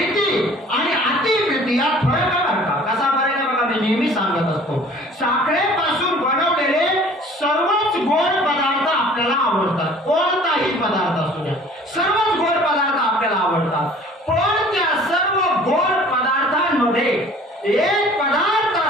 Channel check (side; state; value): both; normal; correlation 0.50